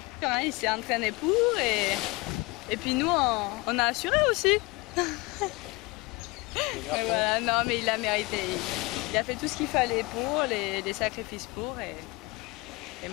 Il s'est entraîné pour et puis nous on a assuré aussi. Mais voilà, non mais il a mérité. Il a fait tout ce qu'il fallait pour, les sacrifices pour et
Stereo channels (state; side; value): quieter; right; 24.0 dB